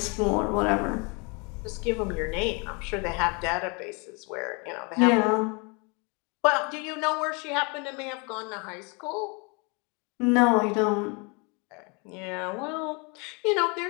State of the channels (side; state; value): right; quieter; 31.6 dB